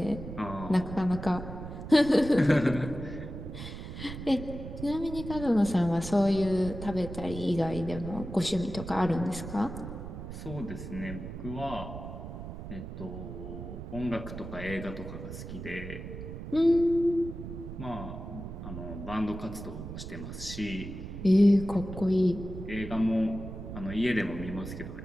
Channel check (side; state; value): right; noise; rumble, 9 dB below the sound